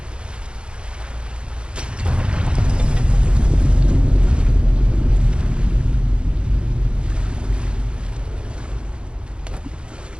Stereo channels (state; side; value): late; left; 0.054 ms